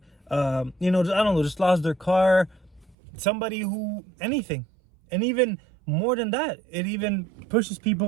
I don't know, just lost their car, somebody who anything. And even more than that, it even pushes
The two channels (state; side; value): drops out; left; at 3.0 s